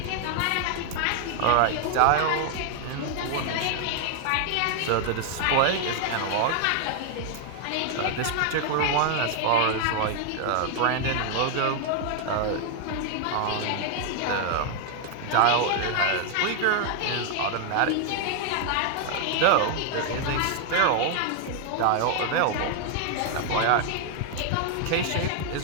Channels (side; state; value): both; different; correlation 0.00